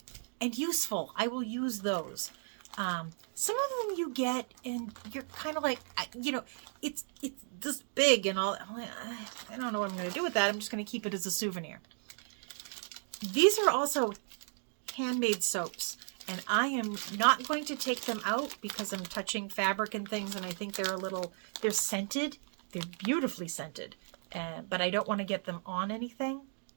and useful. I will use those. Some of them you get and you're kind of like, it's this big and all. I don't know what I'm going to do with that. I'm just going to keep it as a souvenir. These are also handmade soaps, and I am not going to take them out because I'm touching fabric and things, and I think they're scented. They're beautifully scented, but I don't want to get them on anything.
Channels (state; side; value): silent; left; 54 dB below the other